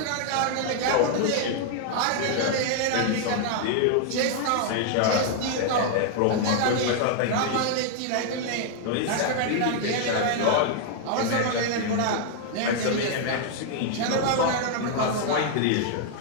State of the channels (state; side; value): different; both; correlation 0.00